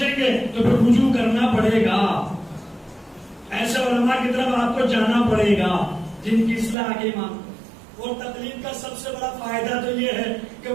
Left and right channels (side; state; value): left; drops out; at 6.8 s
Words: گے تو پھر رجوع کرنا پڑے گا. ایسے علماء کی طرف آپ کو جانا پڑے گا جن کی اصلاح کے امام. اور تقلید کا سب سے بڑا فائدہ تو یہ ہے کہ